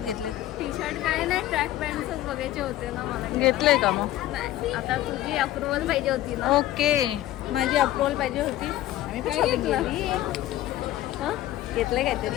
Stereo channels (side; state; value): right; quieter; 14.5 dB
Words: घेतले? टी शर्ट काय नाही, ट्रॅक पॅन्टच बघायचे होते ना मला. घेतले का मग? नाही, आता तुझी अप्रुव्हल पाहिजे होती ना. ओके, माझी अप्रुव्हल पाहिजे होती. आम्ही पण काय shopping घेतलं? केली. घेतलंय